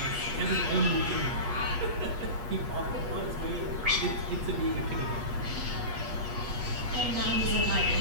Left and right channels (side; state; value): left; late; 8.3 ms